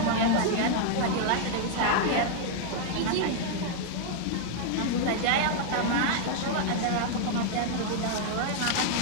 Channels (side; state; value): both; different; correlation 0.00